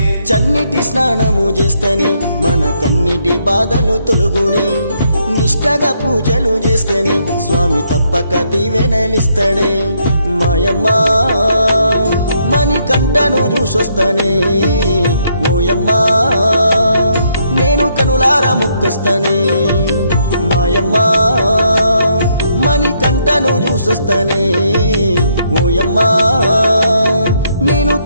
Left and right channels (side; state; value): both; inverted; correlation -0.73